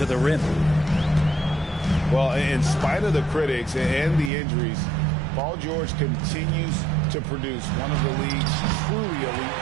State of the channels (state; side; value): drops out; left; at 4.3 s